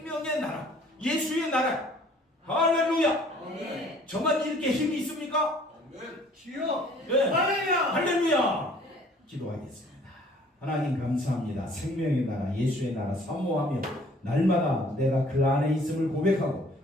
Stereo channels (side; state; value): both; normal; correlation 0.56